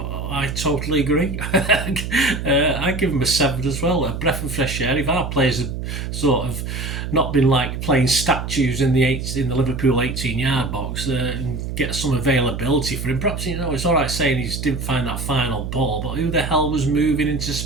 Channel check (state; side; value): noise; right; hum, 5 dB below the sound